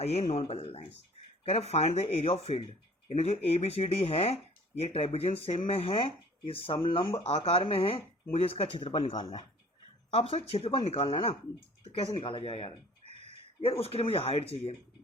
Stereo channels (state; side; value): normal; both; correlation 0.51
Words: ये नॉन पैरेलल लाइंस। कह रहे find the area of field, यानी जो ABCD है ये ट्रेपेजियम शेप में है, ये समलंब आकार में है, मुझे इसका क्षेत्रफल निकालना है। अब सर क्षेत्रफल निकालना है ना, तो कैसे निकाला जाए यार उसके लिए मुझे हाइट चाहिए।